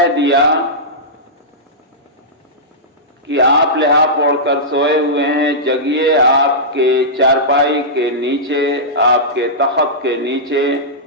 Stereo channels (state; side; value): normal; both; correlation -0.14